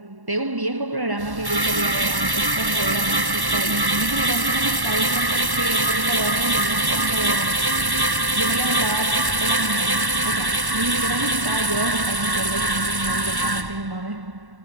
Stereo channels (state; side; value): late; left; 1.1 ms